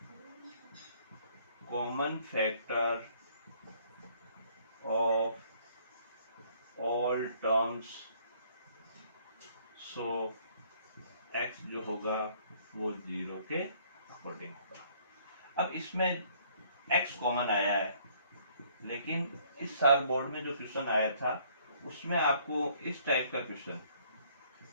common factor of all terms, so x जो होगा वो 0 के अकॉर्डिंग होगा। अब इसमें x कॉमन आया है, लेकिन इस साल बोर्ड में जो क्वेश्चन आया था उसमें आपको इस टाइप का क्वेश्चन,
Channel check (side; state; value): both; inverted; correlation -0.62